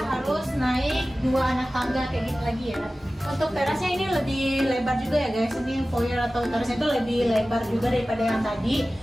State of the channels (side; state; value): both; normal; correlation 0.96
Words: naik 2 anak tangga kayak gitu lagi ya. Untuk terasnya ini lebih lebar juga ya guys. Ini foyer atau terasnya itu lebih lebar juga daripada yang tadi.